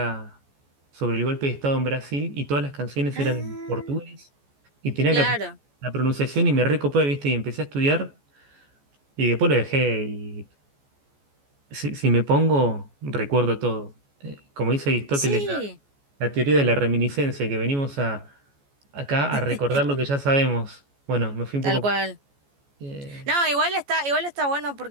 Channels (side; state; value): left; late; 14 ms